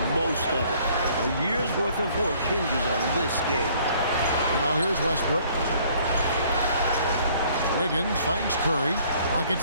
most of it. A year's worth of work hinges on this game. Now here's Westbrook. Wiggins finds Curry. Pocket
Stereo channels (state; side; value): inverted; both; correlation -0.59